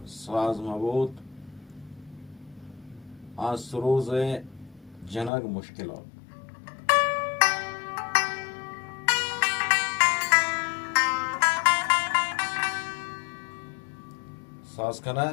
ساز مبود از سروز جنگ مشکلات ساز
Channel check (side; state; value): right; drops out; at 5.3 s